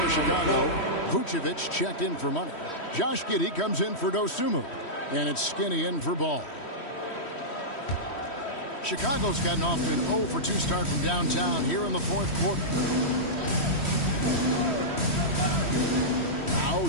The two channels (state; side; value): late; right; 3.1 ms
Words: Chicago. Vucevic checked in for Money. Josh Giddey comes in for Dosunmu. And it's Skinny in for Ball. Chicago's gotten off to an 0 for 2 start from downtown here in the 4th quarter. Now